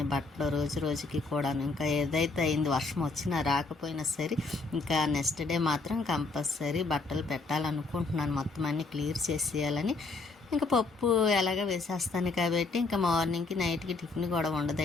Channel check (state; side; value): quieter; right; 3.8 dB